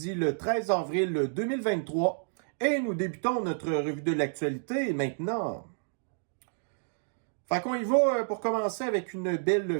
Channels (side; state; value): left; silent; digital silence